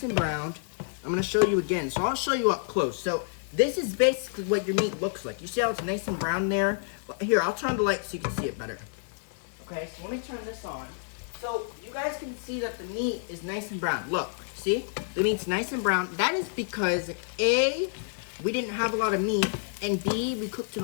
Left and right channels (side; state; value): right; silent; digital silence